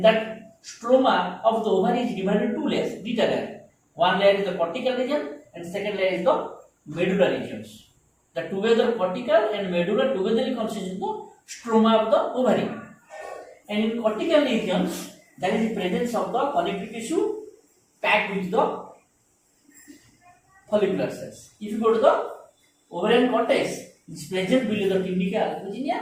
that stroma of the ovary is divided into two layers, dita layer. One layer is the cortical region, and second layer is the medulla regions. The together cortical and medulla together constitute the stroma of the ovary. And in cortical regions, there is the presence of the connective tissue packed with the follicular cells. If you go to the ovarian cortex, it is present below the tunica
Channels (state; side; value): identical; both; correlation 1.00